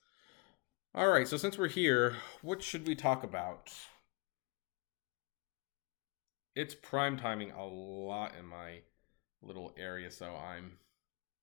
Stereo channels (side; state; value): right; quieter; 28.9 dB